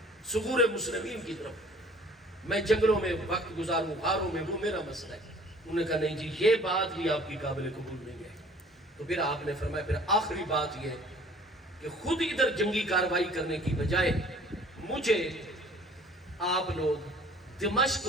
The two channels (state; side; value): normal; both; correlation 0.52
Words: ثغور مسلمین کی طرف، میں جنگلوں میں وقت گزاروں، غاروں میں، وہ میرا مسئلہ ہے۔ انہوں نے کہا نہیں جی یہ بات بھی آپ کی قابل قبول نہیں ہے۔ تو پھر آپ نے فرمایا پھر آخری بات یہ ہے کہ خود ادھر جنگی کارروائی کرنے کی بجائے مجھے آپ لوگ دمشق